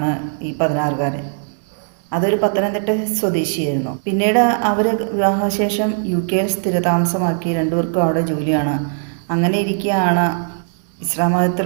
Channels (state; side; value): silent; left; digital silence